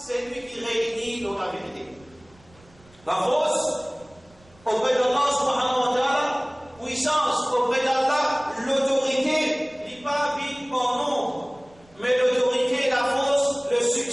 lui qui réunit dans la vérité. La force auprès d'Allah subhanahu wa ta'ala, puissance auprès d'Allah, l'autorité, n'est pas vide par nombre, mais l'autorité, la force, le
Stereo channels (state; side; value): noise; right; rumble, 28 dB below the sound